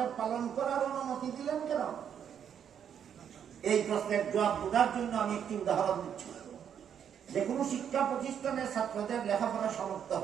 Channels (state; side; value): quieter; left; 8.5 dB